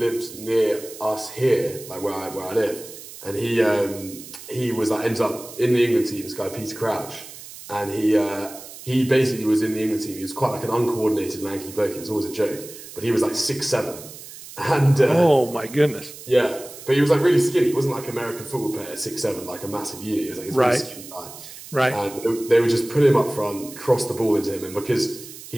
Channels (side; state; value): right; noise; hiss, 15 dB below the sound